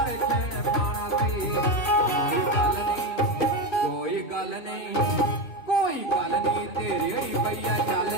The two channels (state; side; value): late; right; 2.5 ms